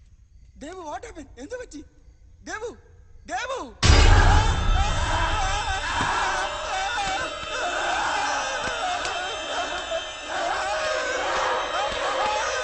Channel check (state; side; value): identical; both; correlation 1.00